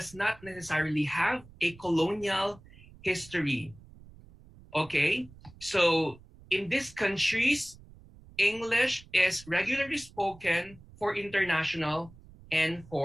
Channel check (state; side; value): noise; right; rumble, 22 dB below the sound